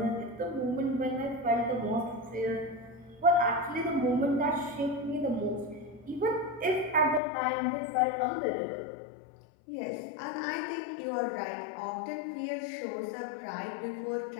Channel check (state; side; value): drops out; right; at 7.2 s